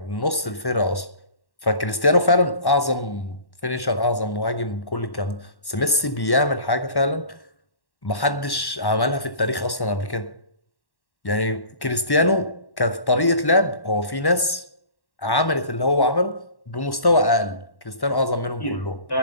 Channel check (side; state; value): right; late; 1.1 ms